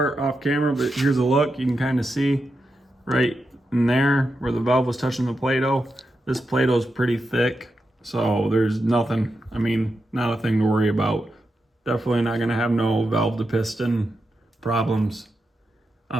off camera, but here's a look. You can kind of see right in there where the valve was touching the Play-Doh. This Play-Doh is pretty thick, so there's nothing, I mean, not a thing to worry about. Definitely not gonna have no valve to piston problems.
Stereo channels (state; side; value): normal; both; correlation 0.88